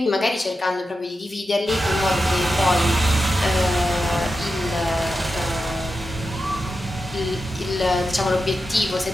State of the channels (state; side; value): normal; both; correlation 0.90